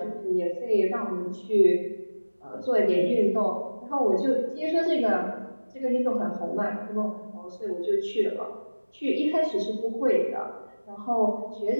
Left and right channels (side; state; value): both; inverted; correlation -1.00